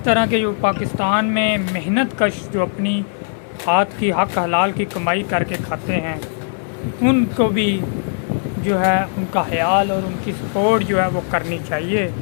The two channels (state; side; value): silent; right; digital silence